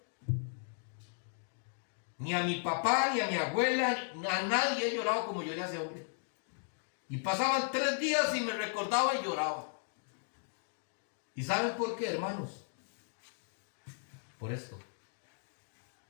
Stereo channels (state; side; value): silent; right; digital silence